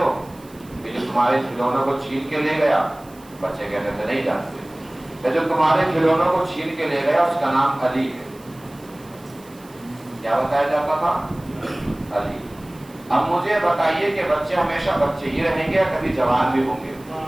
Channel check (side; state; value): right; noise; hiss, 25 dB below the sound